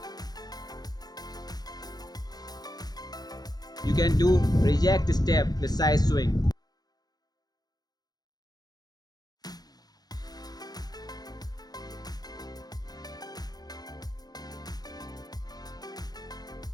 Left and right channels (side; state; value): right; late; 0.19 ms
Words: You can do reject step with side swing.